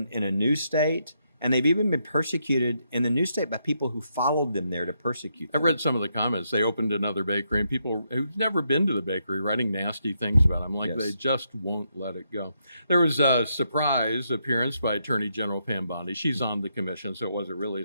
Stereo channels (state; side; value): inverted; both; correlation -0.79